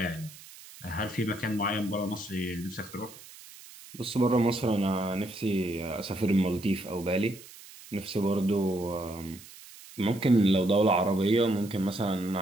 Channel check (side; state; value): right; noise; hiss, 19 dB below the sound